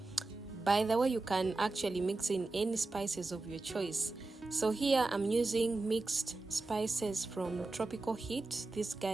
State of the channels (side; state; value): left; quieter; 3.4 dB